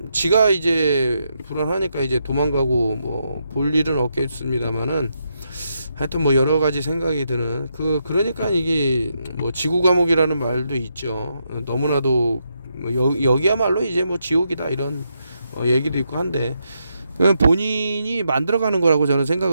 지가 이제 불안하니까 이제 도망가고 뭐 볼 일은 없겠습니다만은, 하여튼 뭐 여러 가지 생각이 드는 그러니까 이게 뭐 지구 감옥이라는 말도 있죠. 너무나도 여기야말로 이제 뭐 지옥이다, 이런 얘기도 있고 한데, 본인이 만들어가는 거라고 저는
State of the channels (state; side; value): inverted; both; correlation -0.81